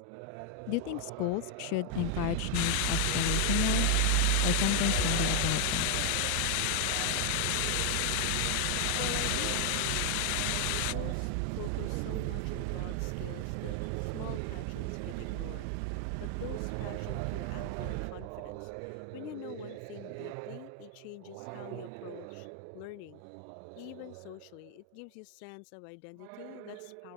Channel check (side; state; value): both; different; correlation 0.00